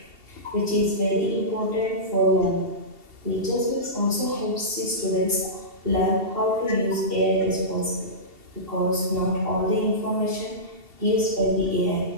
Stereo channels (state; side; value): late; left; 2.7 ms